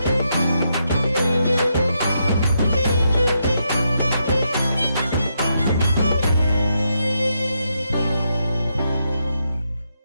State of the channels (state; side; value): inverted; both; correlation -0.81